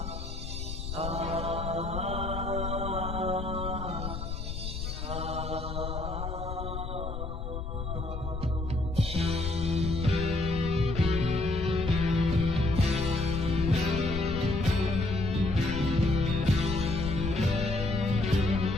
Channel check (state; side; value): noise; left; rumble, 5 dB below the sound